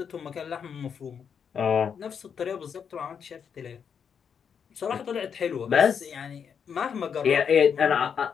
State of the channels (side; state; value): right; quieter; 7.1 dB